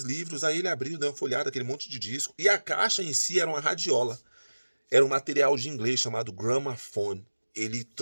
livros, aí ele abriu, deu uma folhada, aquele monte de disco, e a caixa em si era uma radiola. Era um material de inglês chamado Gramophone. Ele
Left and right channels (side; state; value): both; inverted; correlation -1.00